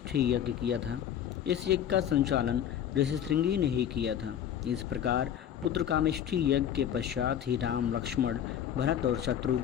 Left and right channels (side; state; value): right; quieter; 9.8 dB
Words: यज्ञ किया था। इस यज्ञ का संचालन ऋषि श्रृंगी ने ही किया था। इस प्रकार पुत्र कामेष्ठी यज्ञ के पश्चात ही राम, लक्ष्मण, भरत और